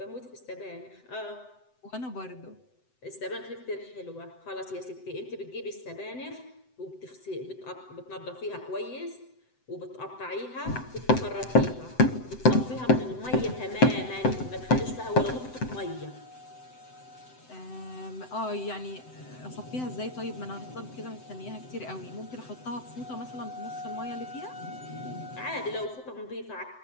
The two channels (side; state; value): right; late; 7.9 ms